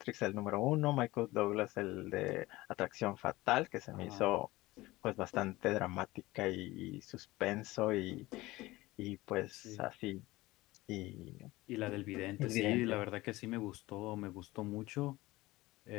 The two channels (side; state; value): right; quieter; 19.3 dB